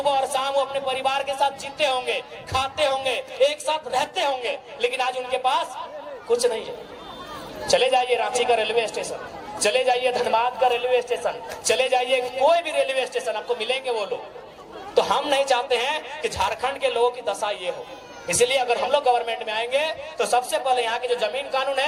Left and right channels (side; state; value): both; identical; correlation 1.00